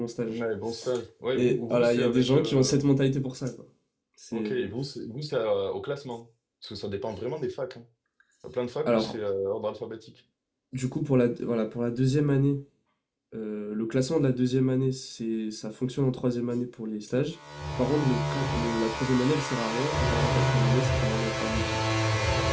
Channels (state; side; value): identical; both; correlation 1.00